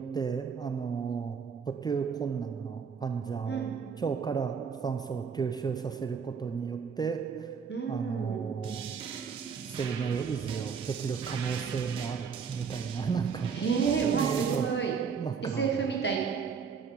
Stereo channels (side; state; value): left; quieter; 6.1 dB